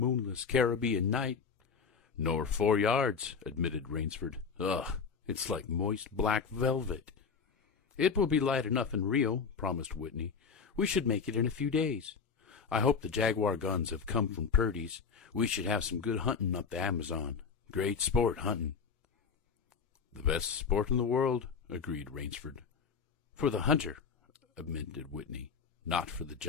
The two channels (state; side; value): quieter; right; 5.8 dB